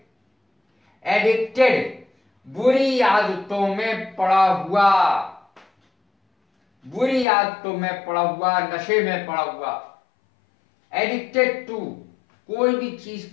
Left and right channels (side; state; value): right; drops out; at 7.2 s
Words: एडिक्टेड बुरी आदतों में पड़ा हुआ, बुरी आदतों में पड़ा हुआ, नशे में पड़ा हुआ। एडिक्टेड टू, कोई भी चीज